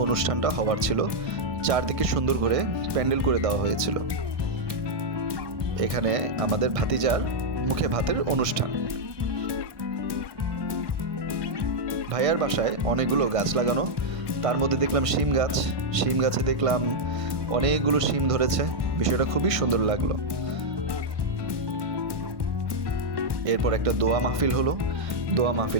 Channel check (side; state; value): left; late; 1.1 ms